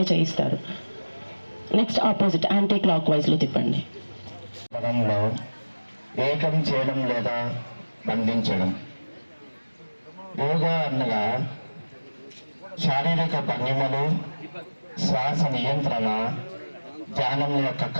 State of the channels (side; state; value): both; inverted; correlation -1.00